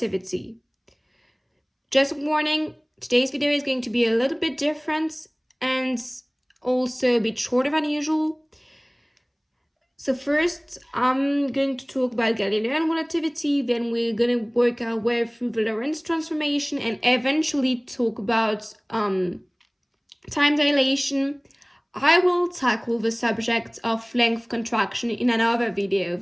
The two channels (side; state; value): both; identical; correlation 1.00